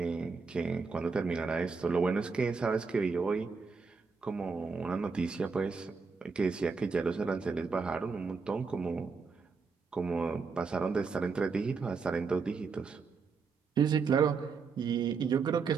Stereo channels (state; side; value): quieter; left; 4.9 dB